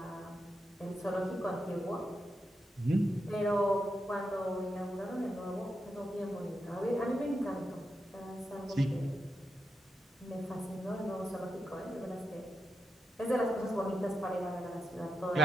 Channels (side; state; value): both; normal; correlation 0.86